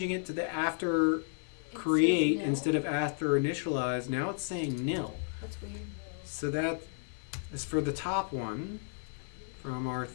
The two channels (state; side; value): silent; right; 56 dB below the other